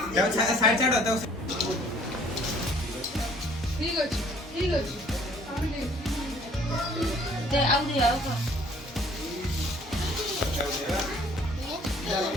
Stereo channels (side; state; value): both; normal; correlation 0.57